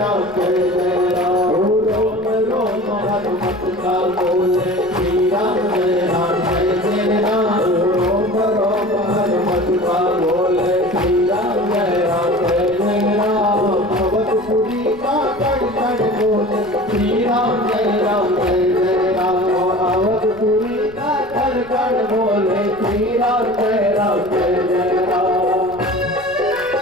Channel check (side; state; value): left; noise; rumble, 22 dB below the sound